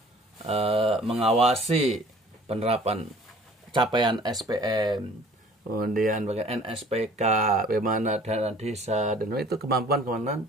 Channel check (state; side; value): normal; both; correlation 0.51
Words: mengawasi penerapan capaian SPM, kemudian bagian NSPK, bagaimana dana desa, dan itu kemampuan